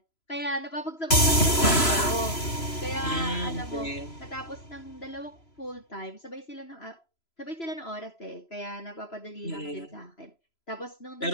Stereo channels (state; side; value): late; right; 3.0 ms